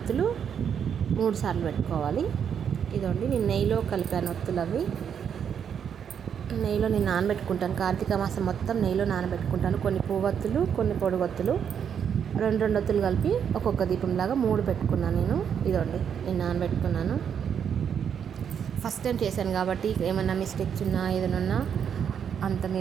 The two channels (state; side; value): quieter; left; 7.9 dB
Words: 3 సార్లు పెట్టుకోవాలి. ఇదండి నేను నెయ్యిలో కలిపాను ఒత్తులు. అవి నెయ్యిలో నేను నానబెట్టుకుంటాను, కార్తీక మాసం మొత్తం నెయ్యిలో నానబెట్టుకుంటాను. కొన్ని పువ్వొత్తులు, కొన్ని పొడుగొత్తులు, 2 ఒత్తులు కలిపి ఒక్కొక్క దీపంలాగా 3 పెట్టుకున్నాను నేను. ఇదండి నేను నానబెట్టుకున్నాను. ఫస్ట్ టైం చేశాను కాబట్టి ఏమన్నా మిస్టేక్స్ ఉన్నా ఏదైనా ఉన్నా అంత